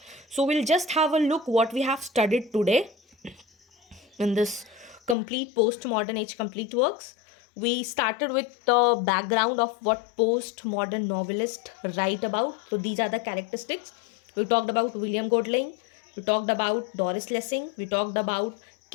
So we'll just have a look what we have studied today in this complete postmodern age complete works. We started with the background of what postmodern novelists write about. So these are the characteristics. We talked about William Godling. We talked about Doris Lessing. We talked about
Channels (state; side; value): drops out; right; at 5.2 s